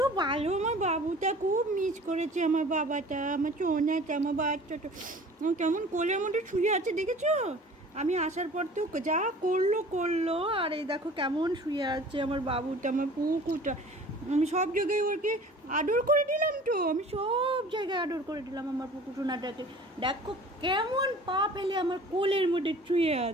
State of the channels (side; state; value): both; normal; correlation 0.45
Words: ভালো আমার বাবুটা, খুব মিস করেছে আমার বাবাটা, আমার ছোনাটা, আমার বাচ্চাটা কেমন কোলের মধ্যে শুয়ে আছে দেখেছো। আমি আসার পর তো যা করলো আর এই দেখো কেমন শুয়ে আছে আমার বাবুটা, আমার পুকুটা। আমি সব জায়গায় ওকে আদর করে দিলাম, আমি সব জায়গায় আদর করে দিলাম আমার পুকু সোনাটাকে। দেখো কেমন পা ফেলে আমার কোলের মধ্যে শুয়ে